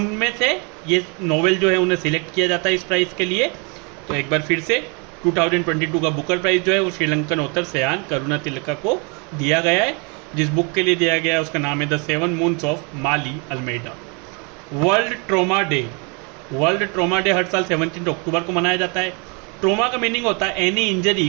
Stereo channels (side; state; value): left; quieter; 33.0 dB